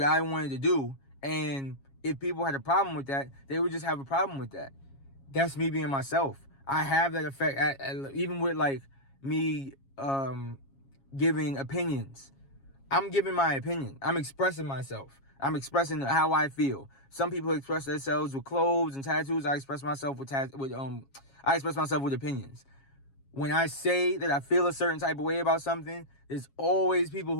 I wanted to do, and if people had a problem with that, they would just have a problem with that. that's me being myself. I have that effect even with like me giving opinions. I'm giving my opinion. I'm expressing myself. I'm expressing how I feel. Some people express themselves with clothes and tattoos. I express myself with opinions. When I say that I feel a certain type of way about something, there's always people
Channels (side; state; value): right; late; 7.3 ms